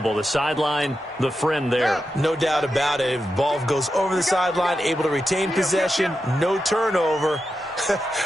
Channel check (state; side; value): normal; both; correlation 0.89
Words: The sideline, the friend there. No doubt about it. If the ball goes over the sideline, able to retain possession, no turnover.